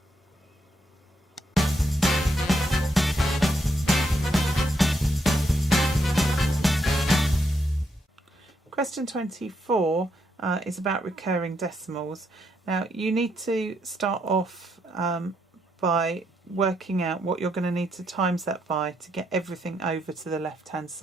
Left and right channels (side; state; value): both; normal; correlation 0.77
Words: Question 24 is about recurring decimals. Now you need to start off by working out what you're going to need to times that by to get everything over to the left hand